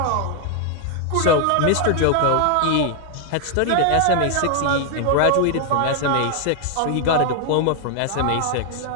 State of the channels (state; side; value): different; both; correlation 0.00